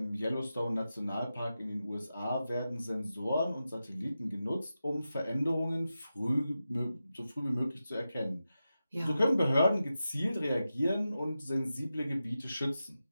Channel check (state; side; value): inverted; both; correlation -0.92